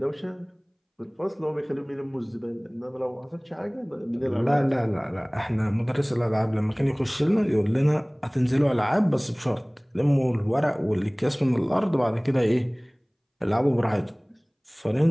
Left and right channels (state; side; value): identical; both; correlation 1.00